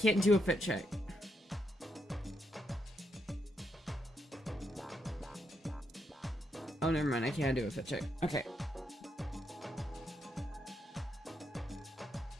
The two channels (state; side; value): normal; both; correlation 0.80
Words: do a fit check. Oh, never mind. I can't do a fit check. Okay.